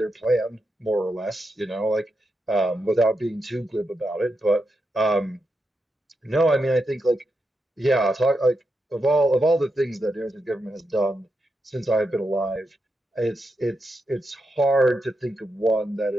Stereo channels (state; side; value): normal; both; correlation 0.85